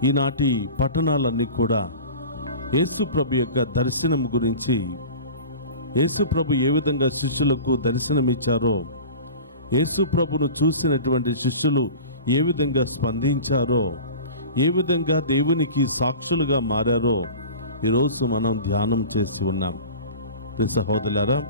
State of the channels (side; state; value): both; inverted; correlation -0.37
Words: ఈనాటి పట్టణాలన్నీ కూడా యేసు ప్రభు యొక్క దర్శనం గురించి, యేసు ప్రభు ఏ విధంగా శిష్యులకు దర్శనమిచ్చారో, యేసు ప్రభును చూసినటువంటి శిష్యులు ఏ విధంగా స్పందించారో, ఏ విధంగా దేవునికి సాక్షులుగా మారారో ఈరోజు మనం ధ్యానం చేసి ఉన్నాం. ప్రియ సహోదరులారా,